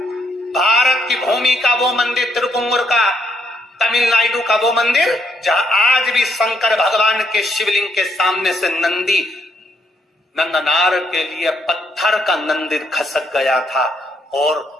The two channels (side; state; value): both; normal; correlation 0.73